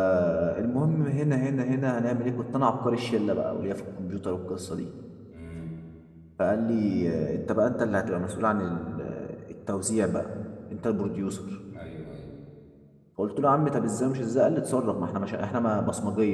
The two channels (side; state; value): both; identical; correlation 1.00